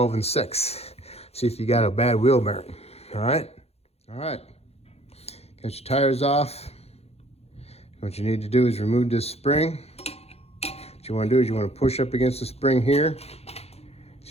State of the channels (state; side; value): late; right; 0.30 ms